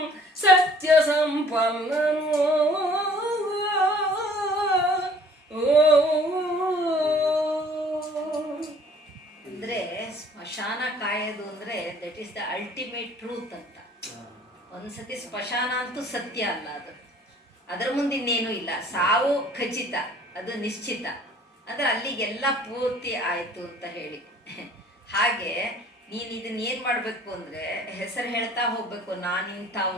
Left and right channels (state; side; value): normal; both; correlation 0.53